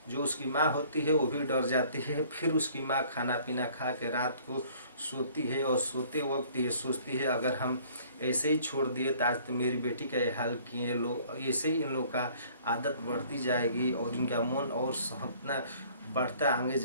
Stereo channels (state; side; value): inverted; both; correlation -0.55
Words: जो उसकी माँ होती है वो भी डर जाती है। फिर उसकी माँ खाना पीना खा के रात को सोती है, और सोते वक्त ये सोचती है अगर हम ऐसे ही छोड़ दिए तो आज तो मेरी बेटी का ये हाल किए लोग, ऐसे ही इन लोग का आदत बढ़ती जाएगी और इनका मन और इतना बढ़ता आगे